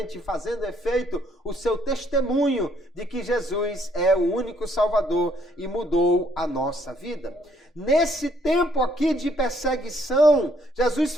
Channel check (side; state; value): both; normal; correlation 0.67